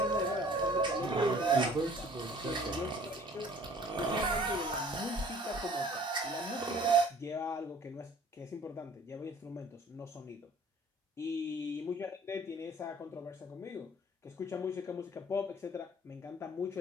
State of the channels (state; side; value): normal; both; correlation 0.52